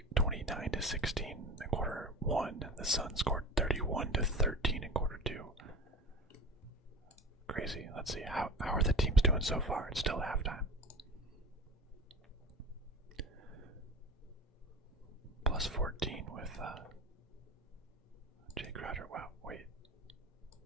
to 16 in quarter one. The Suns scored 31 to 13 in quarter two. Crazy. Let's see, how are the teams doing so far? It's still halftime. Plus 14 with Jay Crowder. Wow, wait.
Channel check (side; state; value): both; normal; correlation 0.34